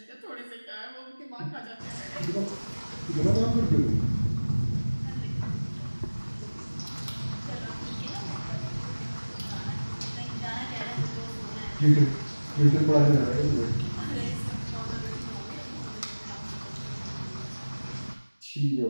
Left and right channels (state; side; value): inverted; both; correlation -1.00